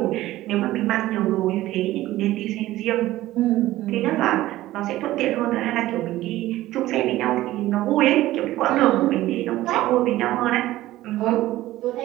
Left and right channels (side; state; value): left; quieter; 15.9 dB